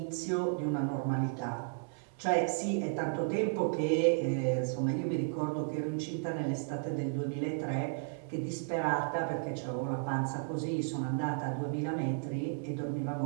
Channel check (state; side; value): silent; left; 55 dB below the other